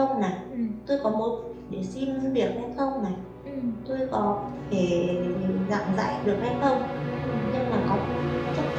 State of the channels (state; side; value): identical; both; correlation 1.00